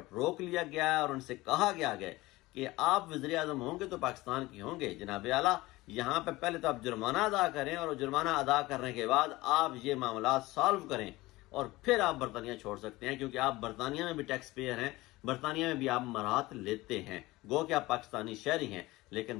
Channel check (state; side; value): quieter; right; 19.7 dB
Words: रोक लिया गया है और उनसे कहा गया है कि आप वज़ीर आज़म होंगे तो पाकिस्तान की होंगे। जनाब आला, यहाँ पे पहले तो आप जुर्माना अदा करें और जुर्माना अदा करने के बाद आप ये मामला सॉल्व करें और फिर आप बरतानिया छोड़ सकते हैं, क्योंकि आप बरतानिया में भी टैक्स पेयर हैं, बरतानिया में भी आप मराहत लेते हैं। गो कि आप पाकिस्तानी शहरी हैं,